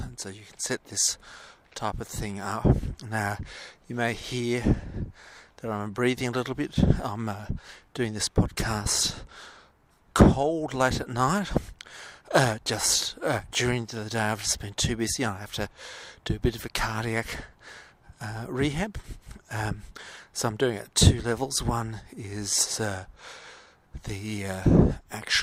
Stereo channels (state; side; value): identical; both; correlation 1.00